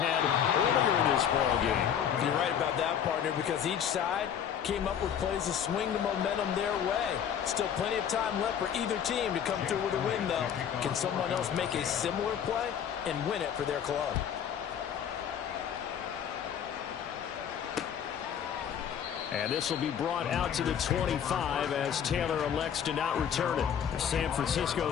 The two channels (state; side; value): quieter; right; 8.7 dB